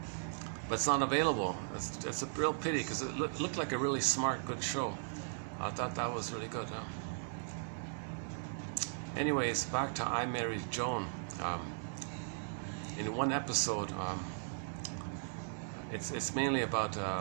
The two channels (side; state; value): left; silent; digital silence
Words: But it's not available. It's a real pity, because it looked like a really smart, good show. I thought that was really good. Anyways, back to I Married Joan. In one episode, it's mainly about